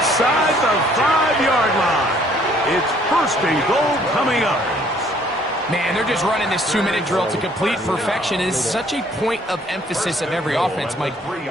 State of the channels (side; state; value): both; normal; correlation 0.61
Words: the 5-yard line. It's first and goal coming up. Man, they're just running this 2-minute drill to complete perfection. It's such a point of emphasis of every offense, Mike.